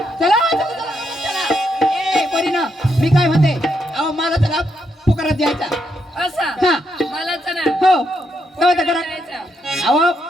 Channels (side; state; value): both; normal; correlation 0.79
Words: चला ए पोरीना मी काय म्हणते अहो मला चला पुकारात द्यायचा असा हा मला चला हो तेव्हा करा अहो